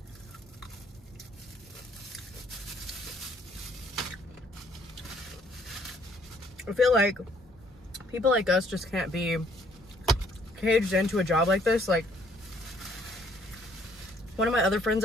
I feel like people like us just can't be caged into a job like this. Like, one of my other friends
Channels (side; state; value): both; normal; correlation 0.64